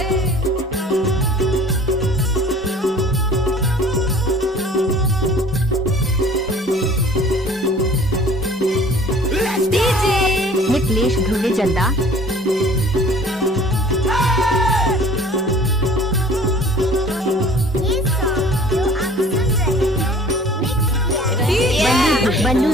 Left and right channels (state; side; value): normal; both; correlation 0.49